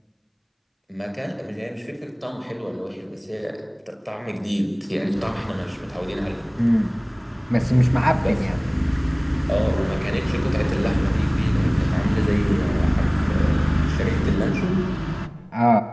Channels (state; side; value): identical; both; correlation 1.00